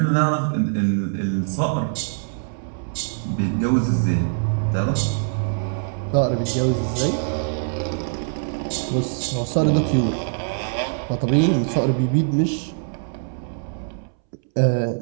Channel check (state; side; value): silent; left; 63 dB below the other